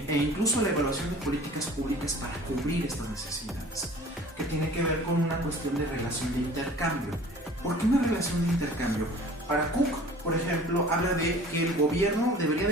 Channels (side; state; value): both; normal; correlation 0.46